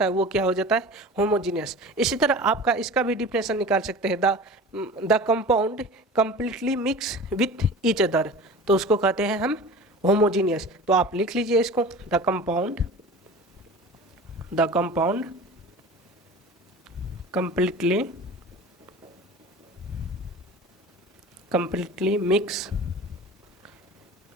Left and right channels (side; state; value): both; normal; correlation 0.37